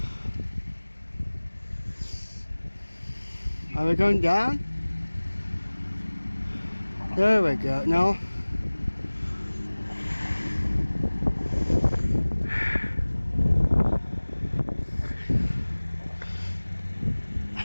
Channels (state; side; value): inverted; both; correlation -1.00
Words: Are we going down? There we go. No.